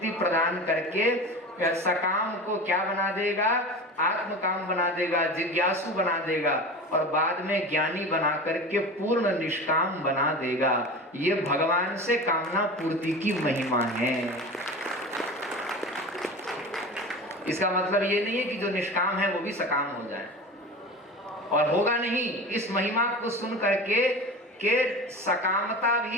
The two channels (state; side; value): normal; both; correlation 0.32